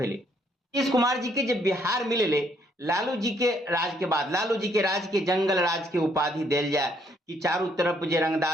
नीतीश कुमार जी के जे बिहार मिले लालू जी के राज के बाद, लालू जी के राज के जंगल राज के उपाधि दिल जाए कि चारों तरफ जे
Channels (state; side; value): normal; both; correlation 0.69